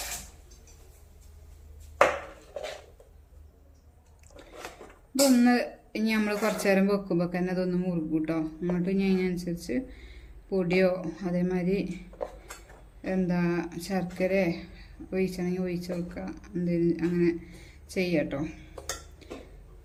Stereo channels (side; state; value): both; identical; correlation 1.00